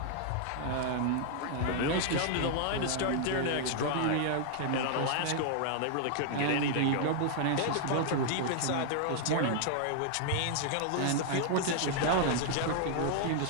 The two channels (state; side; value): different; both; correlation -0.01